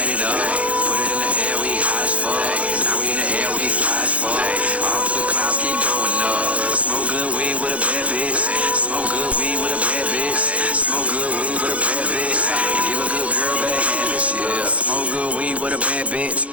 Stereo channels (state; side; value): late; left; 0.065 ms